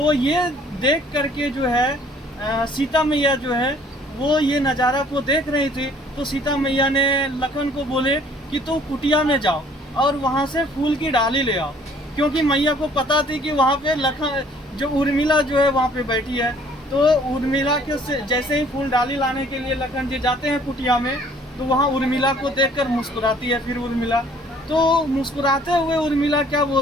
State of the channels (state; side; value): normal; both; correlation 0.57